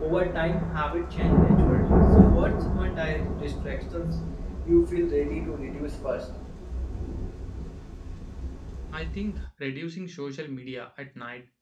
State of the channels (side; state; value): both; identical; correlation 1.00